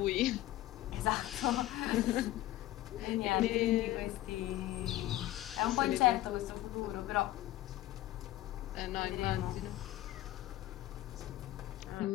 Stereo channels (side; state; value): right; quieter; 15.0 dB